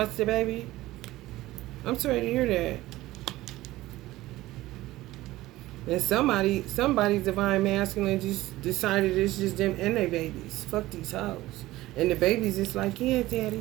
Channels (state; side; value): quieter; left; 17.1 dB